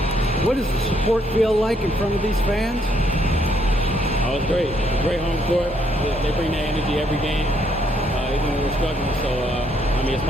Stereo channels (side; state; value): both; normal; correlation 0.71